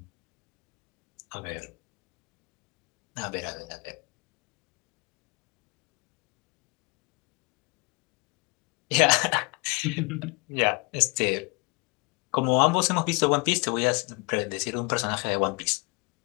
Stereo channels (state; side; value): quieter; right; 29.6 dB